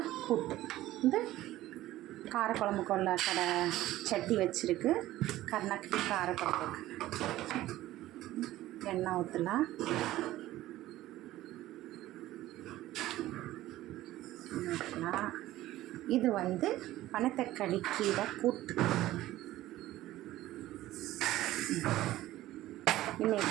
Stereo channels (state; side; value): quieter; left; 15.5 dB